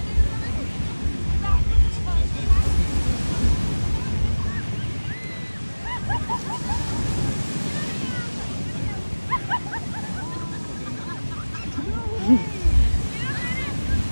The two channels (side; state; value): both; inverted; correlation -1.00